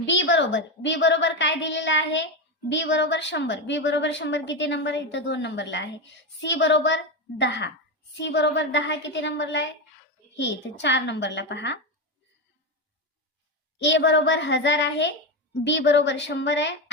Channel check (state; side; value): normal; both; correlation 0.13